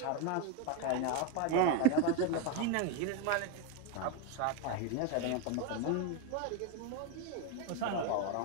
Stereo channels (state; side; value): different; both; correlation 0.02